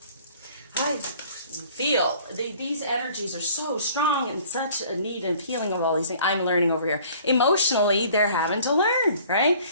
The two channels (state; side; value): inverted; both; correlation -0.52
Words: I feel these energies are so strong and such a need and feeling of all these things. I'm learning over here. Emotionally, they're having to learn, right?